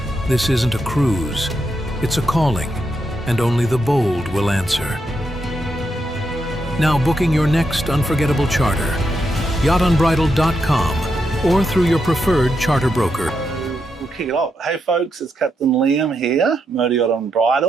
This isn't a cruise, it's a calling, and only the bold will answer. Now booking your next unforgettable charter, yachtunbridled.com or through your preferred charter broker. We'll kick it off. Hey folks, it's Captain Liam here, Motor Yacht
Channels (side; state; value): both; normal; correlation 0.82